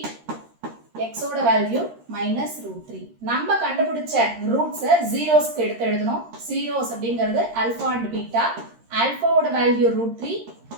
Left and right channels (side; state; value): left; late; 13 ms